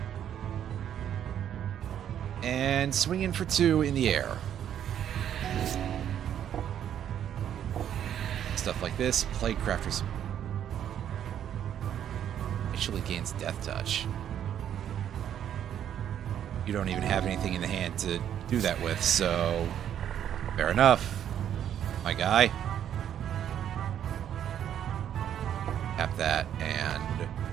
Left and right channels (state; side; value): quieter; left; 9.9 dB